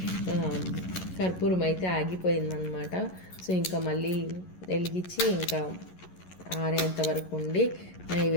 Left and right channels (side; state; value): right; late; 11 ms